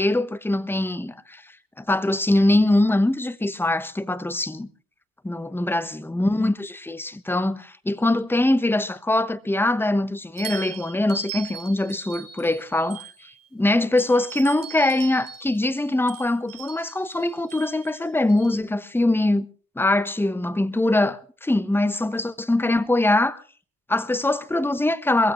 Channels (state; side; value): normal; both; correlation 0.85